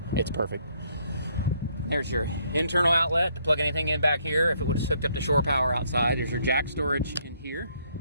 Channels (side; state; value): both; inverted; correlation -0.69